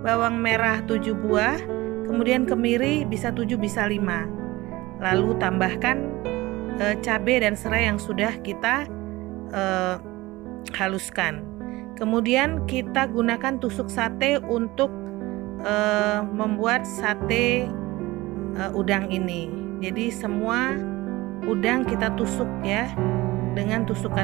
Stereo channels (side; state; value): left; quieter; 19.8 dB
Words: bawang merah 7 buah, kemudian kemiri bisa 7 bisa 5. Lalu tambahkan cabai dan serai yang sudah kita haluskan. Kemudian kita gunakan tusuk sate untuk membuat sate udang ini. Jadi semua udang kita tusuk ya dengan